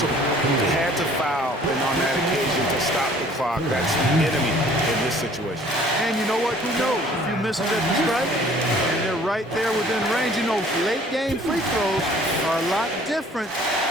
They had to foul, and on that occasion to stop the clock. That's enemy in this situation. And you know what? Who knows? If you miss it at the stripe, and they're right there within range. You know, late game free throws are a lot different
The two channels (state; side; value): normal; both; correlation 0.54